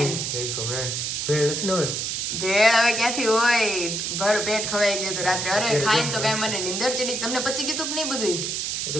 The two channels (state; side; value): noise; right; hiss, 2 dB below the sound